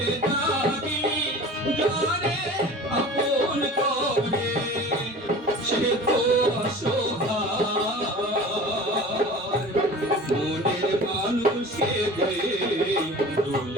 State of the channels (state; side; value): normal; both; correlation 0.39